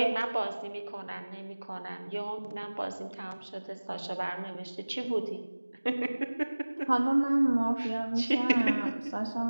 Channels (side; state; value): both; inverted; correlation -1.00